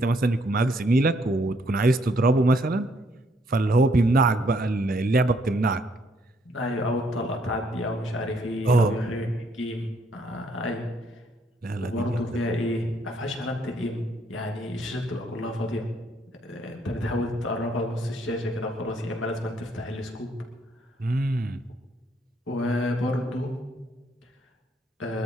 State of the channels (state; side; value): normal; both; correlation 0.69